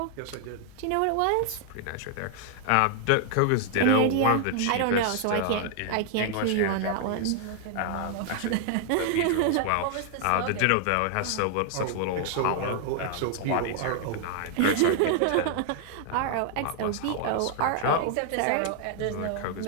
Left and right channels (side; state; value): both; different; correlation 0.00